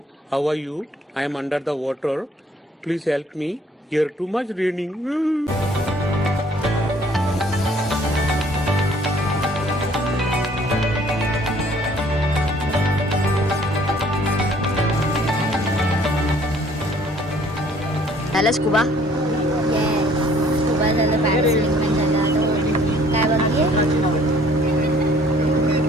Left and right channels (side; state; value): both; normal; correlation 0.58